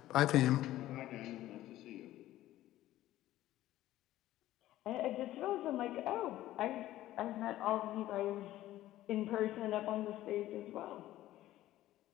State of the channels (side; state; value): right; quieter; 14.6 dB